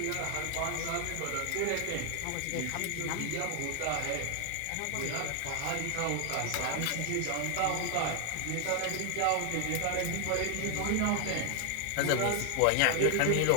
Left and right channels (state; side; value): different; both; correlation 0.00